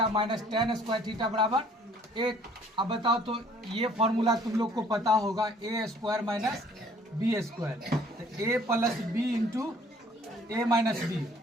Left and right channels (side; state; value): both; normal; correlation 0.57